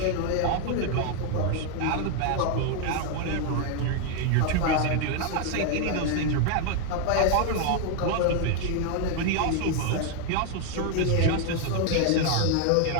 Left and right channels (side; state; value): both; different; correlation 0.00